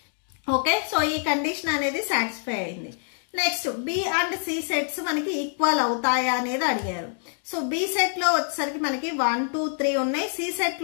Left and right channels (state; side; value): silent; right; 61 dB below the other